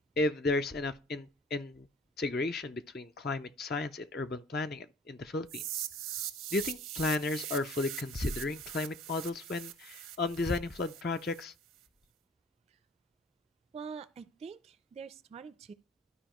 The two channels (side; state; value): both; normal; correlation 0.50